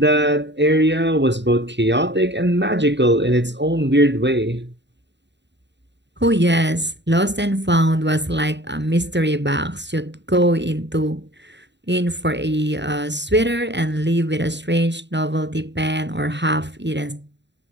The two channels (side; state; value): left; late; 0.52 ms